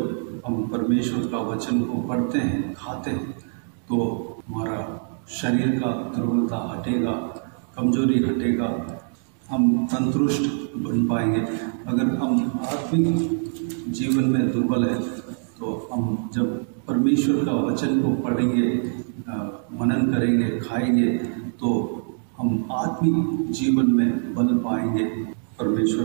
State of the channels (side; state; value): left; silent; 63 dB below the other